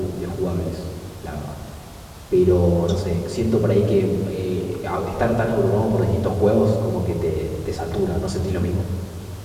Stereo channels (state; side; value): identical; both; correlation 1.00